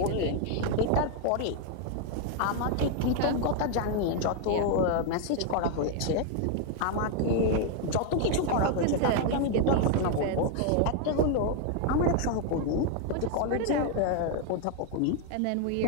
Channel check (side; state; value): both; different; correlation 0.01